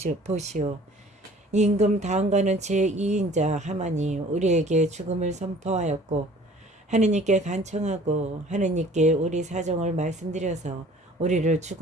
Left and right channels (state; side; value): normal; both; correlation 0.51